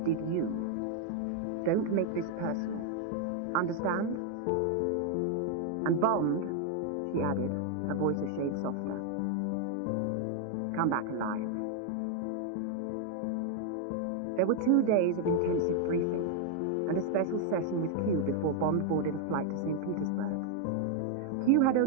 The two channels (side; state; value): both; different; correlation 0.00